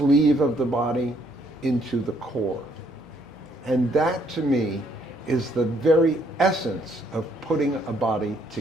of the body into the core. And that to me is the very essence of putting a body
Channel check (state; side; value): normal; both; correlation 0.68